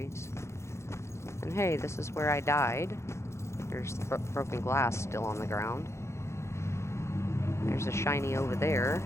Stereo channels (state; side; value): late; right; 0.13 ms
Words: And hey, this is where I died. There's the broken glass still on the ground. There's a shiny over there